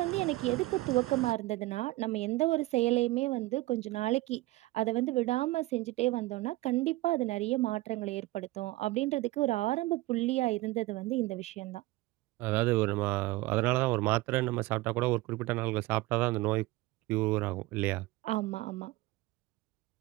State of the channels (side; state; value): left; quieter; 19.1 dB